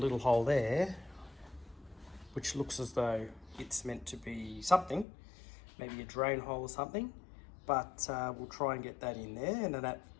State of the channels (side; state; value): right; drops out; at 5.1 s